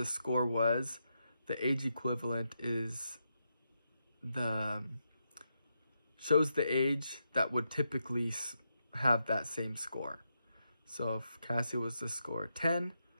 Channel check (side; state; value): both; inverted; correlation -0.84